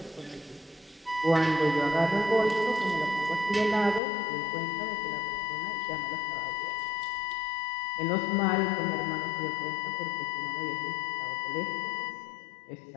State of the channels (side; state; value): right; drops out; at 4.0 s